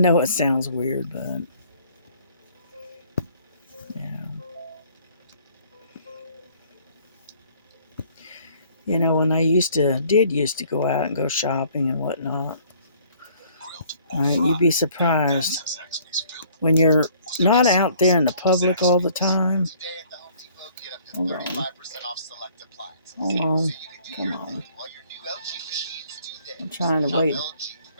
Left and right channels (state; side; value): inverted; both; correlation -0.58